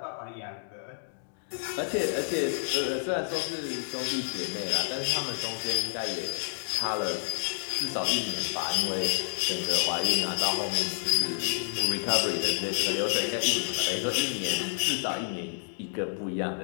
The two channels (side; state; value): right; silent; digital silence